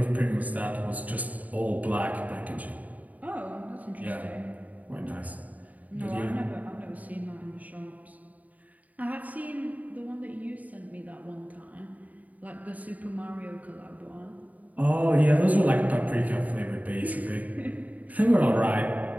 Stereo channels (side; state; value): left; late; 0.074 ms